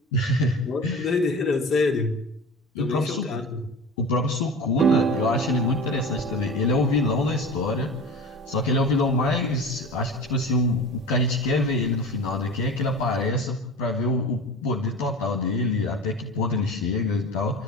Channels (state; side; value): normal; both; correlation 0.33